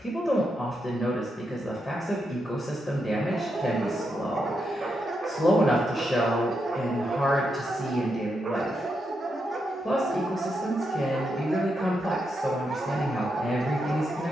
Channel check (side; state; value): both; normal; correlation 0.83